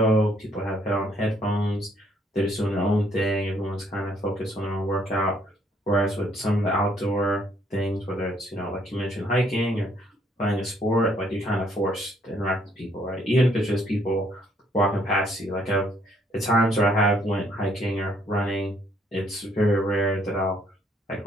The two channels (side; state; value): both; normal; correlation 0.67